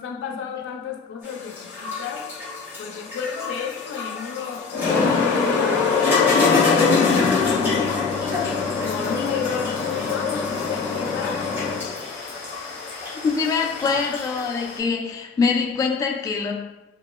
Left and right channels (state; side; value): quieter; right; 4.7 dB